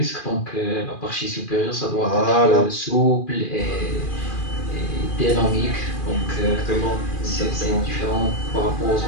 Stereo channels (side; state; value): right; late; 2.4 ms